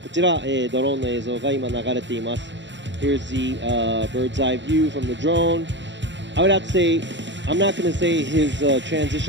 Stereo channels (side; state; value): left; late; 0.53 ms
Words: ちら、ドローンの映像が今流れています。Here's the bird's eye view from the drone. I would have to say, I'm not going to say his